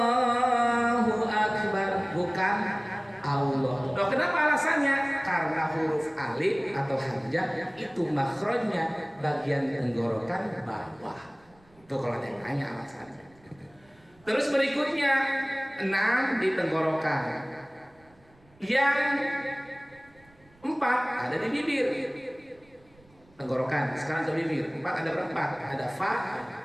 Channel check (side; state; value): right; noise; rumble, 30 dB below the sound